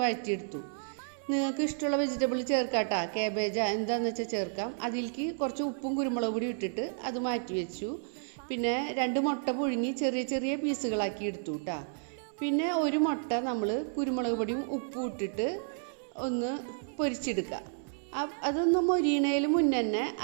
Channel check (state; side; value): silent; left; 57 dB below the other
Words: വഴറ്റിയെടുത്തു. നിങ്ങൾക്ക് ഇഷ്ടമുള്ള വെജിറ്റബിൾ ചേർക്കാട്ടോ, കാബേജാ എന്താണെന്ന് വെച്ചാൽ ചേർക്കാം. അതിലേക്ക് കുറച്ച് ഉപ്പും കുരുമുളക് പൊടി ഇട്ടിട്ട് അത് മാറ്റി വെച്ചു. പിന്നെ 2 മുട്ട പുഴുങ്ങി ചെറിയ ചെറിയ പീസുകളാക്കി എടുത്തു കേട്ടോ. പിന്നെ ഒരു മുട്ട നമ്മൾ കുരുമുളക് പൊടിയും ഉപ്പും ഇട്ടിട്ട് ഒന്ന് പൊരിച്ചെടുക്കുക. അതൊന്ന് മൊരിയണേൽ മുന്നേ തന്നെ